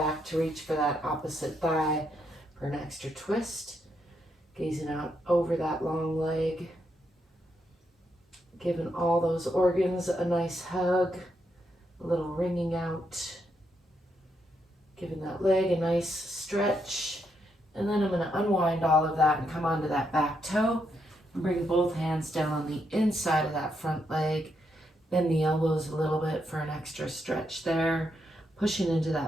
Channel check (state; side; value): normal; both; correlation 0.79